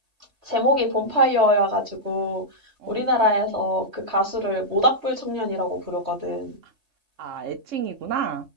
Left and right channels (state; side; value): late; left; 3.1 ms